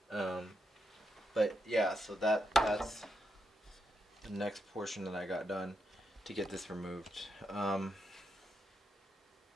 But yeah, so that's the next portion that I got done to get this removed.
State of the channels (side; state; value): both; normal; correlation 0.83